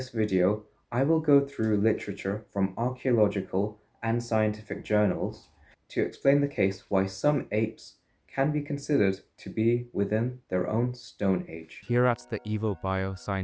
video, I will go through literature from archaeological and scientific journals to explain the case why some apes can be considered to be within their own Stone Age. Here at the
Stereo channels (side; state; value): both; identical; correlation 1.00